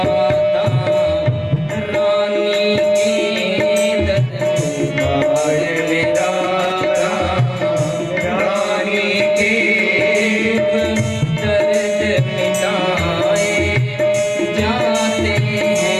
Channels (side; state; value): both; identical; correlation 1.00